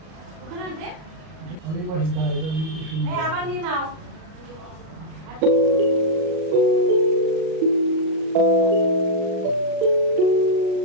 আমি পাশে দাঁড়িয়ে আবার নিয়ে নাও।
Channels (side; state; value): left; late; 38 ms